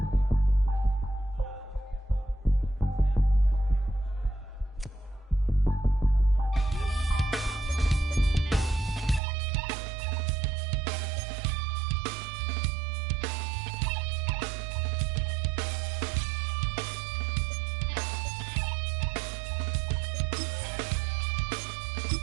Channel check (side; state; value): left; drops out; at 9.2 s